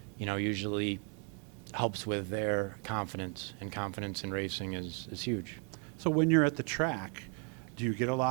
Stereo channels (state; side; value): quieter; left; 38.3 dB